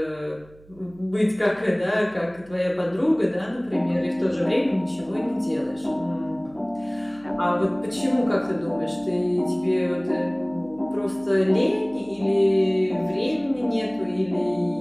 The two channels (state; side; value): noise; right; hum, 25 dB below the sound